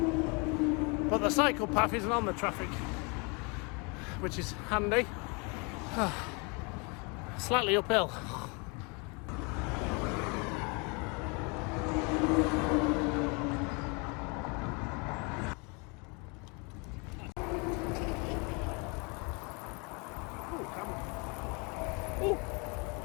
But the cycle path isn't on the traffic, which is handy. Slightly uphill.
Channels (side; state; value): right; quieter; 31.7 dB